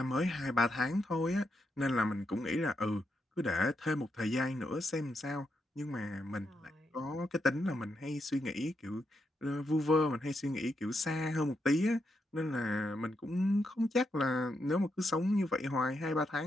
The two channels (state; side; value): normal; both; correlation 0.82